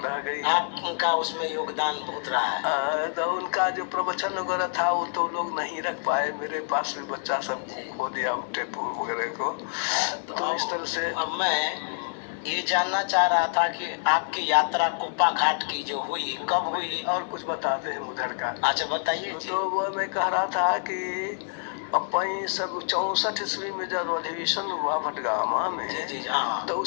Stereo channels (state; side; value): silent; right; digital silence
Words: रह गई। आपका उसमें योगदान बहुत रहा है। तो उनका जो प्रवचन वगैरह था वो तो लोग नहीं रख पाए, मेरे पास भी बच्चा सब खो दिया टेप वगैरह को। तो इस तरह से अब मैं ये जानना चाह रहा था कि आपकी यात्रा कुप्पा घाट की जो हुई, कब हुई? और कुछ बताते हैं उधर का। अच्छा बताइए। तो वो मैं कह रहा था कि अपनी सब 64 ईस्वी में जब अधिवेशन हुआ भटगामा में, जी हाँ। तो